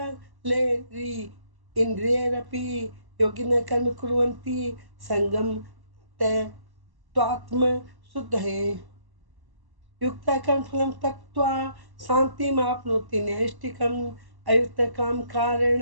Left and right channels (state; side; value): late; left; 1.1 ms